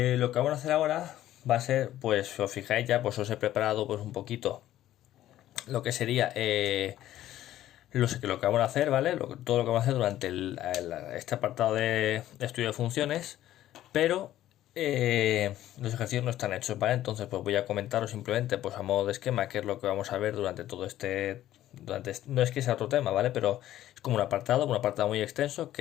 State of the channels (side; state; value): right; quieter; 13.3 dB